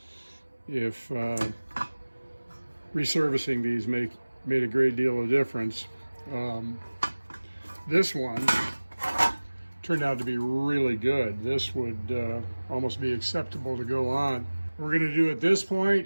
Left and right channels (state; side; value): inverted; both; correlation -1.00